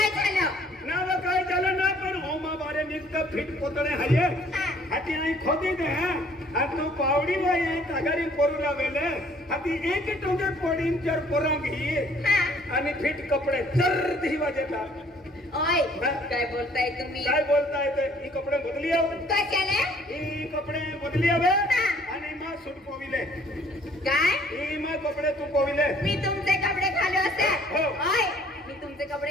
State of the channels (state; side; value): normal; both; correlation 0.59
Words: झालं ना व काय झालं ना पण होमा बारे निघत फिट पोतळे हाये हाती आई खोदी दे हा तू पावडी वाय तगारी पोरूला वेले हाती एक टोंगे पोडीन चर पोरांगी आणि फिट कपडे चर दिवा देता ओय काय बोलताय तुम्ही काय बोलताय ते ही कपडे बदली आव कशाले ही कपडे बदली आवे आणि मा सूट पोविले काय ही मा कपडे तू पोविले मी तुमचे कपडे घालू असे हो. ओय मी तुमचे